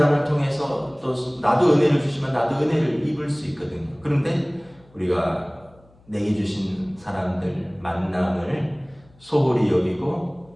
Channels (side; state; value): left; noise; hum, 29 dB below the sound